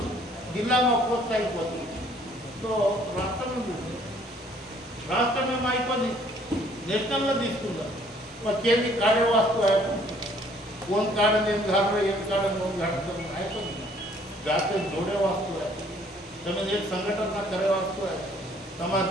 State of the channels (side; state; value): both; normal; correlation 0.60